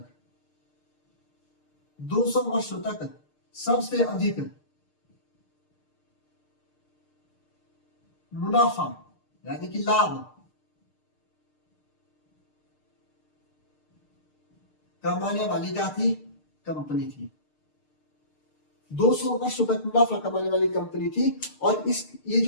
200 वर्षों तक सबसे अधिक मुनाफा यानी कि लाभ कमाने वाली क्या थी, कंपनी थी। 200 वर्षों तक मुनाफा कमाने वाली कंपनी थी। और इस ये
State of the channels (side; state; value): right; late; 6.6 ms